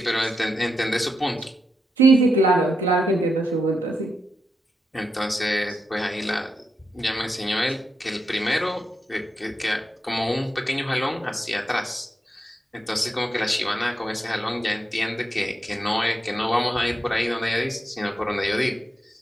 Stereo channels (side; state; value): both; normal; correlation 0.84